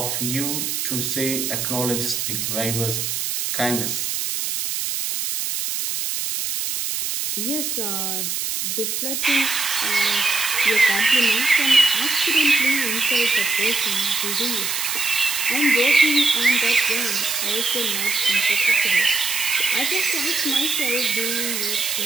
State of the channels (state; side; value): noise; right; hiss, 2 dB below the sound